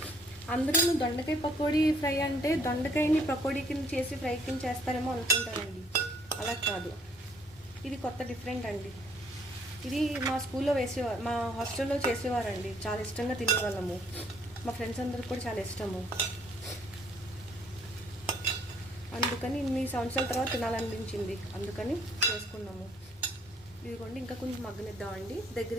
అందరూ దొండకాయ పకోడీ ఫ్రై అంటే దొండకాయని పకోడీ కింద చేసి ఫ్రై కింద చేస్తారేమో అనుకుంటారండి. అలా కాదు, ఇది కొత్త డిఫరెంట్ అండి. ఇది మా స్కూల్లో వేసేవారు, మా హాస్టల్లో చేసేవారండి. చాలా ఇష్టంగా తినేవాళ్ళము. మా ఫ్రెండ్స్ అందరికి కూడా చాలా ఇష్టము. అందుకని ఇన్ని సంవత్సరాల తర్వాత తినాలనిపించింది, అందుకని చేసుకున్నాము. ఇదిగోండి ఇంకా కొంచెం మగ్గనిద్దామండి.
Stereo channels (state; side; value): normal; both; correlation 0.63